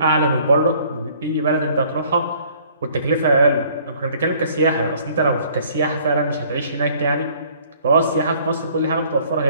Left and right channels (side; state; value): both; inverted; correlation -0.58